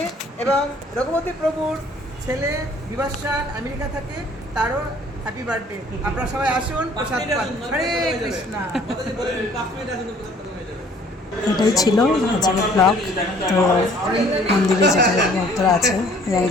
এবং রঘুপতি প্রভুর ছেলে বিভাসান আমেরিকা থাকে, তারও হ্যাপি বার্থডে। আপনারা সবাই আসুন, প্রসাদ পান। হরে কৃষ্ণ। এটাই ছিল আজকের ব্লগ। তো মন্দিরে যেটা ভক্তরা আছে, ইয়াং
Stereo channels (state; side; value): normal; both; correlation 0.56